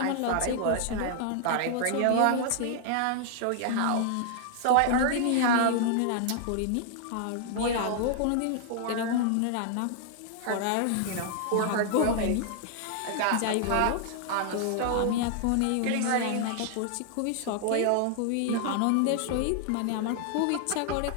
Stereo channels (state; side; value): different; both; correlation 0.00